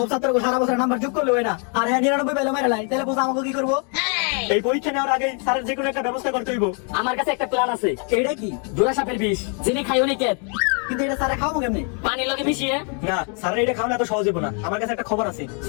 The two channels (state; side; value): quieter; right; 39.7 dB